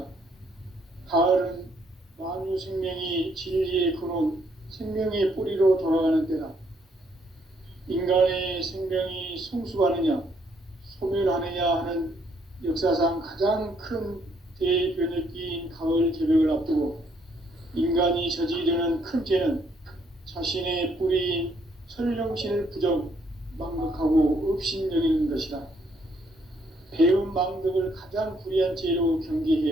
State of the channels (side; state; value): both; normal; correlation 0.70